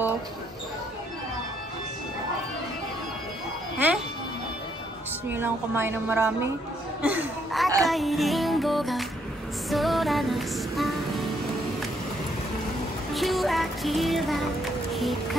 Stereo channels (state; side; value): normal; both; correlation 0.72